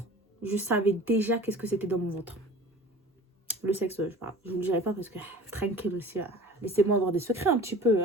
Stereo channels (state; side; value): normal; both; correlation 0.42